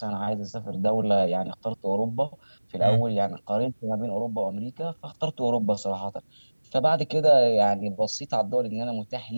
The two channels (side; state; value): both; inverted; correlation -1.00